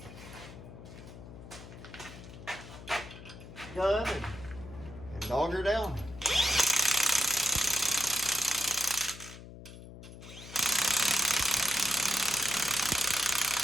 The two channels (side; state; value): left; noise; hum, 15 dB below the sound